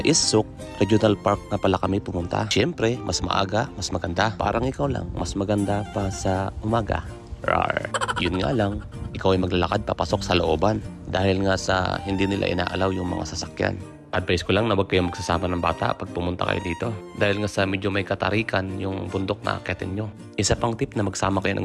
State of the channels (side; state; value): both; identical; correlation 1.00